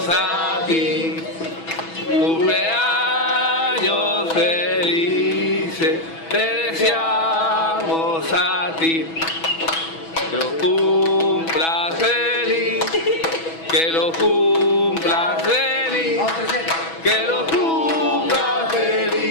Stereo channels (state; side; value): late; right; 6.1 ms